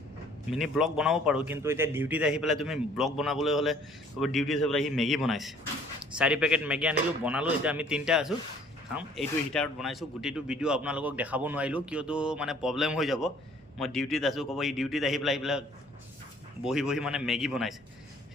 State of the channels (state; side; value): normal; both; correlation 0.56